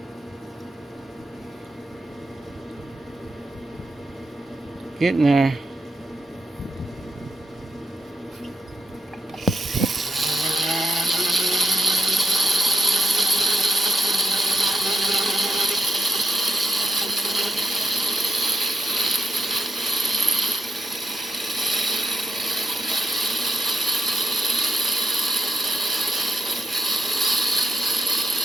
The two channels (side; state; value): both; normal; correlation 0.82